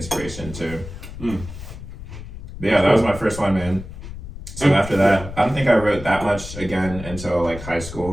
too. But yeah, that was my first one, man. So after that, I don't think I wrote that much again until like high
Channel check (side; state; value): left; noise; rumble, 11 dB below the sound